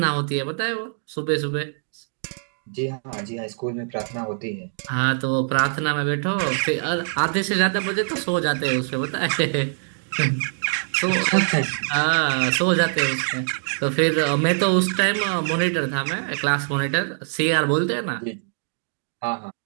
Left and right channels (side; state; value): left; silent; digital silence